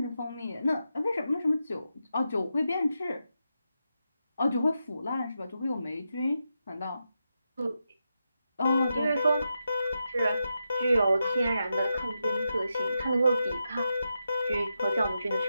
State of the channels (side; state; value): both; inverted; correlation -0.87